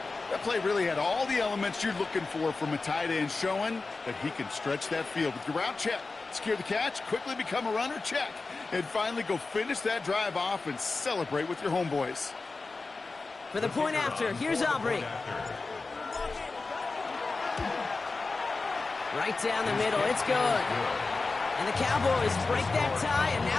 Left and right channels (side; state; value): right; quieter; 3.8 dB